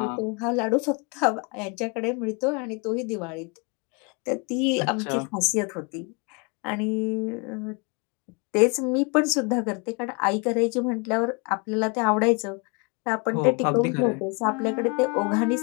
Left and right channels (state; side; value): quieter; right; 31.9 dB